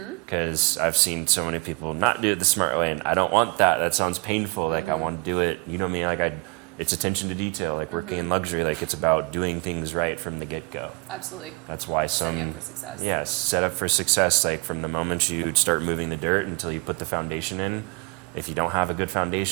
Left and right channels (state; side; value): quieter; left; 30.3 dB